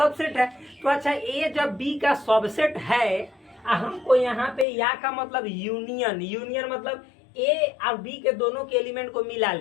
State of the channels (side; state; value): right; drops out; at 4.7 s